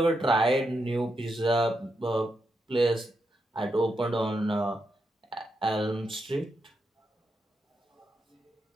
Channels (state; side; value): normal; both; correlation 0.84